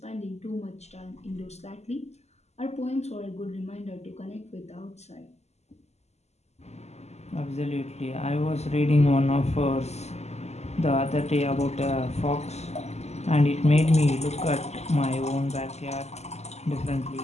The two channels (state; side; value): late; right; 0.32 ms